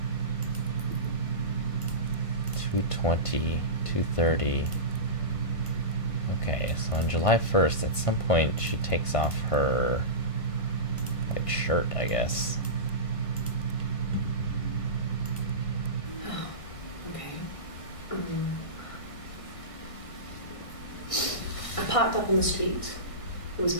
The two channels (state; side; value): late; right; 1.5 ms